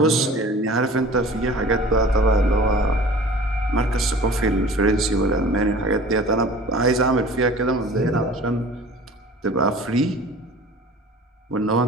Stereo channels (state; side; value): normal; both; correlation 0.43